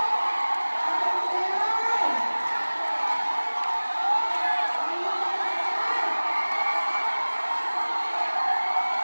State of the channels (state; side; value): inverted; both; correlation -1.00